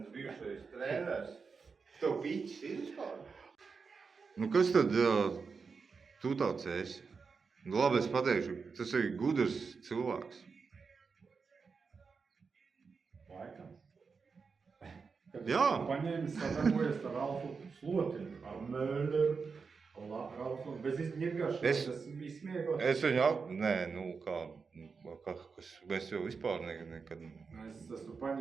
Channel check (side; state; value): left; quieter; 5.1 dB